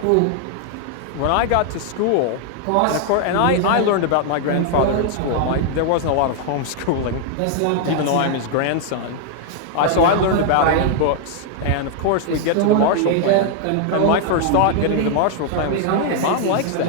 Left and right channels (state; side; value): different; both; correlation 0.00